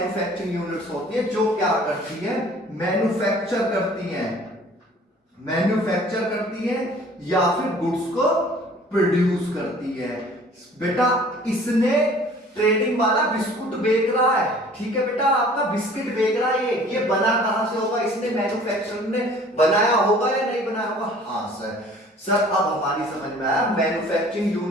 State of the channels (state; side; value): normal; both; correlation 0.51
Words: यूनिट्स होती है जो क्या करती है, मैन्युफैक्चर करती हैं, मैन्युफैक्चर करती है या फिर गुड्स को प्रोड्यूस करती है। बेटा इसने ट्रेडिंग वाला बिस्कुट बेच रहा है, ठीक है बेटा, आपका बिस्किट बेच रहा है, ये बना कहां से होगा? इसने मैन्युफैक्चर ने बनाया होगा या नहीं बनाया होगा? हाँ सर। सर अब हमारी समझ में आया, मैन्युफैक्चरिंग